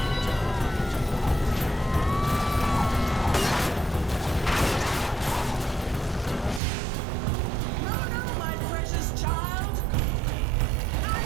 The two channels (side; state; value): left; drops out; at 6.6 s